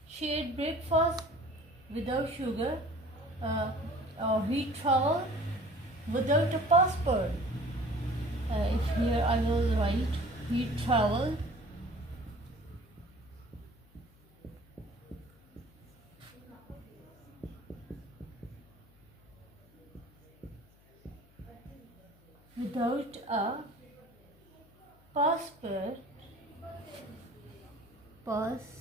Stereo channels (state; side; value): noise; left; hum, 28 dB below the sound